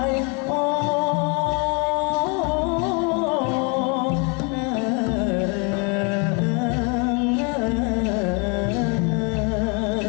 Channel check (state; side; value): quieter; right; 33.4 dB